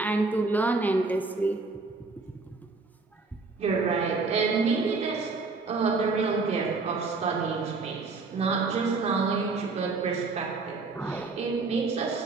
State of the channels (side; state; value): left; quieter; 4.0 dB